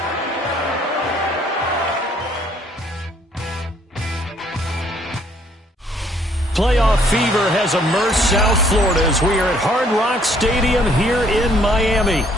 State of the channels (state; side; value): normal; both; correlation 0.64